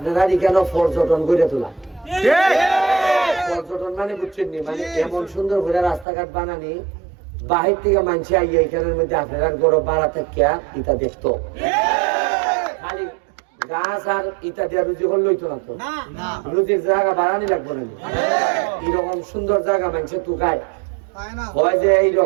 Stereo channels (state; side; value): drops out; left; at 6.1 s